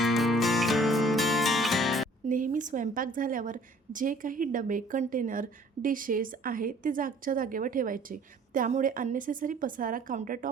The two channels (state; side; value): normal; both; correlation 0.54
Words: नेहमी स्वयंपाक झाल्यावर जे काही डबे, कंटेनर, डिशेस आहे ते जागच्या जागेवर ठेवायचे. त्यामुळे अननेसेसरी पसारा